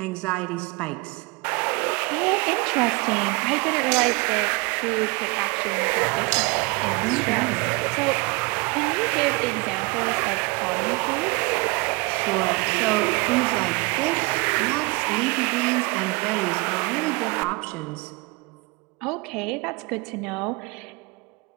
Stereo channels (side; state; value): left; quieter; 27.2 dB